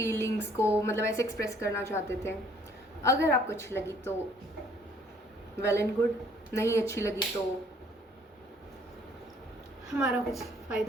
को मतलब ऐसे एक्सप्रेस करना चाहते थे। अगर आपको अच्छी लगी तो वेल एंड गुड, नहीं अच्छी लगी तो हमारा कुछ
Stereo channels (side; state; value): both; normal; correlation 0.60